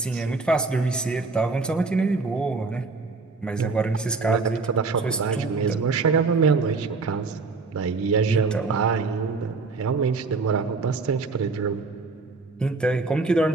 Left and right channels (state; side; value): quieter; left; 4.1 dB